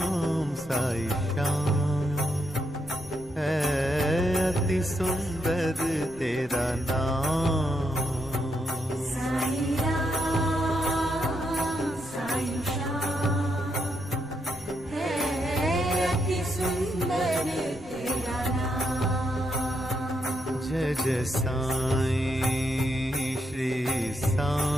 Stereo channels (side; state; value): right; noise; rumble, 20 dB below the sound